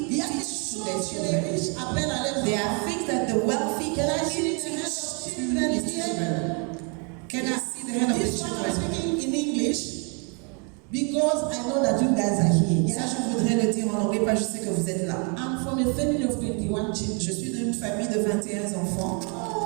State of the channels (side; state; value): left; quieter; 36.2 dB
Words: Il y a des teach to their choses que les children. riches apprennent à leurs There enfants. are things that the wealthy Can I can see teach the hand of to children his here? children. Can I see the hand of the This one I'm children? speaking in English because I know that you guys are here. Ça, Yeah? je voudrais le dire en anglais, parce que je sais que vous êtes là. I'm from a family of 21 children. Je suis d'une famille de 21 enfants.